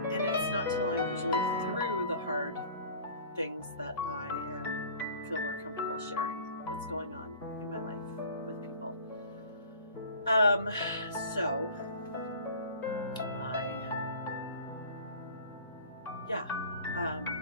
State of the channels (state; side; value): inverted; both; correlation -0.43